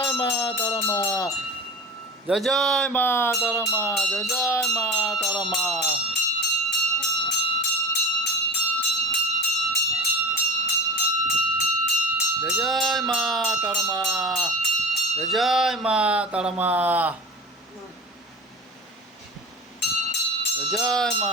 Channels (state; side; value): normal; both; correlation 0.35